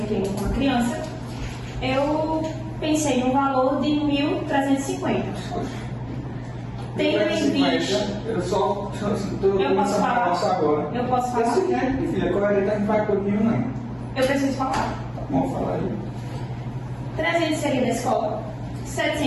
com a criança, eu pensei no valor de 1.350. Tendo em vista... Eu só estou Eu posso falar? agora. Eu posso falar? É o seguinte, filha, coerente não vai comigo, não. Eu preciso falar. Vamos falar aí. 300 seria da escola,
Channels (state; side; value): identical; both; correlation 1.00